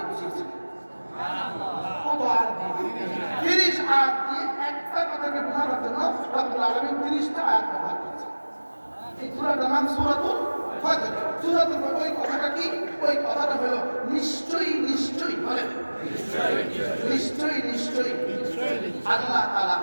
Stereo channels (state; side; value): inverted; both; correlation -1.00